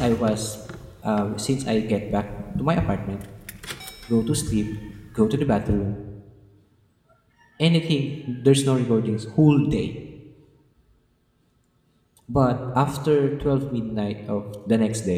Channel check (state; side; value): identical; both; correlation 1.00